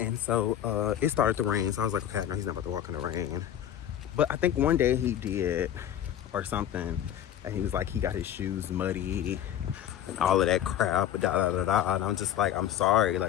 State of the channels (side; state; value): right; quieter; 10.8 dB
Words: so, it started to rain. So I was like, okay, no, he's not about to walk in the rain. But I think one day he did, or something. And he was like, he got his shoes muddy and all of that crap, And I'm just like, I'm sorry.